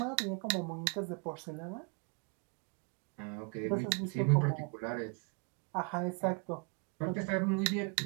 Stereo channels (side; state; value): left; quieter; 34.6 dB